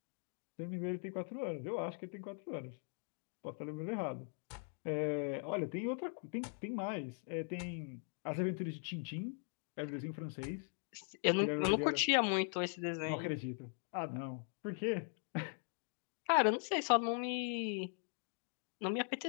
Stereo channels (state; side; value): silent; right; 51 dB below the other